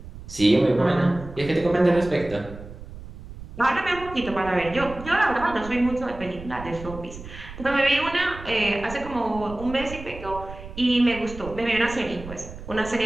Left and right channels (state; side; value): noise; right; rumble, 14 dB below the sound